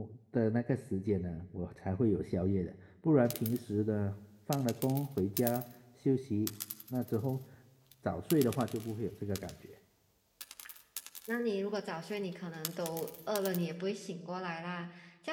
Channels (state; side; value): identical; both; correlation 1.00